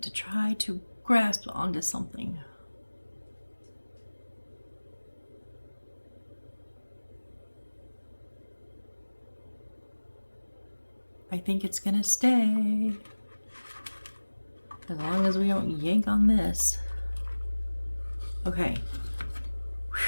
to try to grasp onto something. I think it's gonna stay. As long as we don't yank on this. Okay.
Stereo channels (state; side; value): inverted; both; correlation -1.00